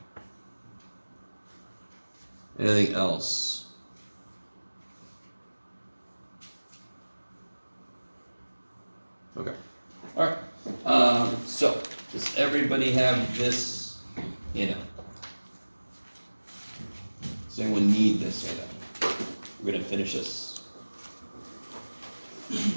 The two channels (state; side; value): inverted; both; correlation -1.00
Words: Anything else? Okay. All right. So, does everybody have this handout? Does anyone need this handout? We're going to finish this.